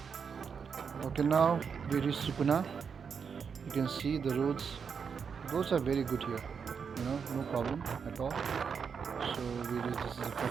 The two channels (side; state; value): left; quieter; 6.3 dB